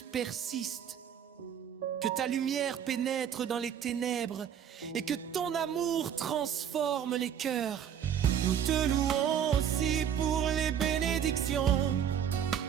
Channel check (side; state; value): left; quieter; 8.9 dB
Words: persistent, que ta lumière pénètre dans les ténèbres et que ton amour transforme les cœurs. Nous te louons aussi pour les bénédictions,